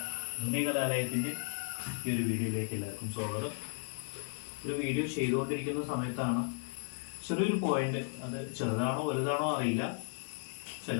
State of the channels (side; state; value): right; silent; 54 dB below the other